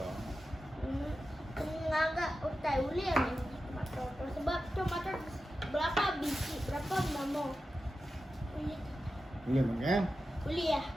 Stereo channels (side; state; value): both; normal; correlation 0.92